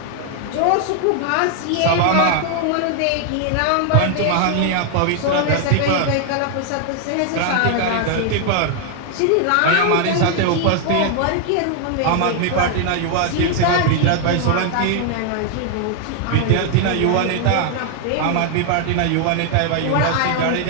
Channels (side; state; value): both; different; correlation 0.00